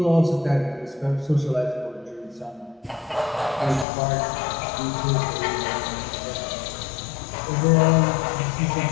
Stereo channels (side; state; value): right; drops out; at 3.9 s